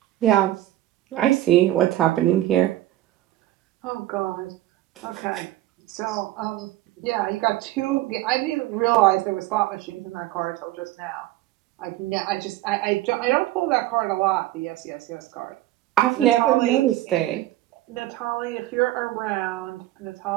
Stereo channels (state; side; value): quieter; left; 15.4 dB